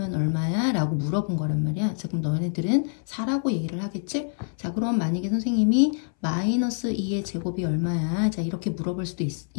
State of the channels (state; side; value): silent; right; 61 dB below the other